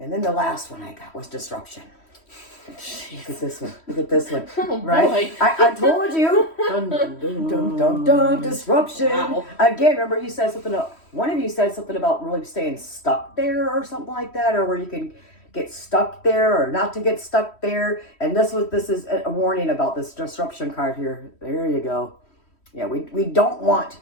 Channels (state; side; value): late; right; 3.1 ms